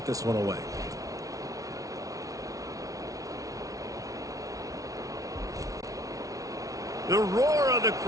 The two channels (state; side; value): late; left; 0.17 ms